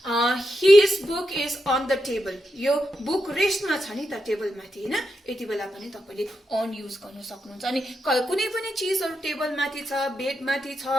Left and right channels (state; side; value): normal; both; correlation 0.85